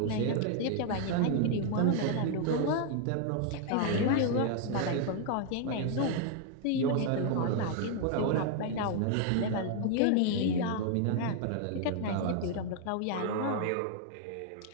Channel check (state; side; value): different; both; correlation 0.00